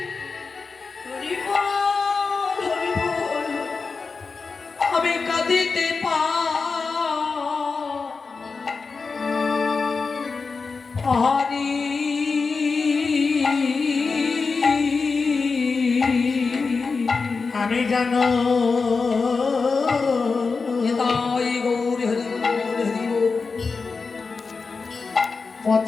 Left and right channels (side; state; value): right; quieter; 4.6 dB